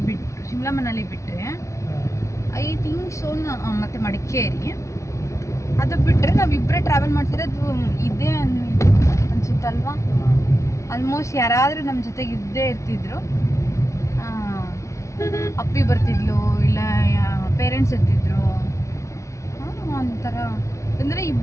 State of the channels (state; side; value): late; right; 0.14 ms